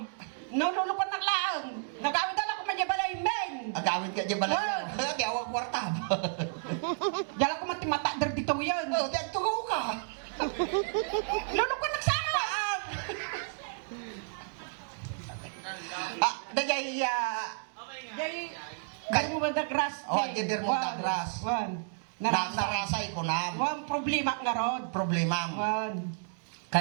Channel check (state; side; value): silent; left; digital silence